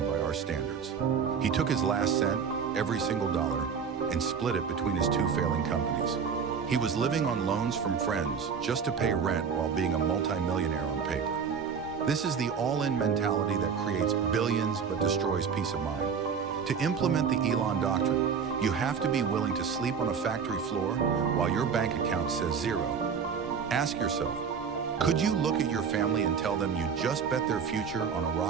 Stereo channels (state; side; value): quieter; left; 6.5 dB